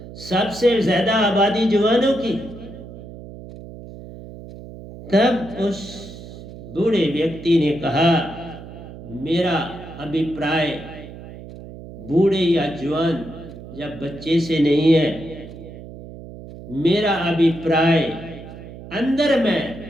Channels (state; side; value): noise; right; hum, 14 dB below the sound